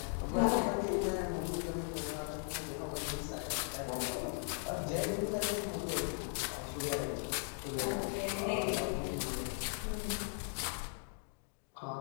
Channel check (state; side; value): silent; right; 52 dB below the other